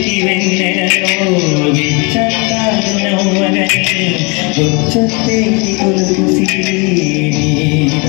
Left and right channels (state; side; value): quieter; right; 29.3 dB